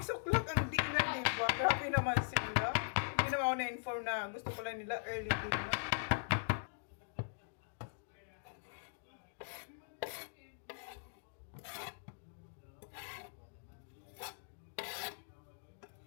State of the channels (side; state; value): right; silent; digital silence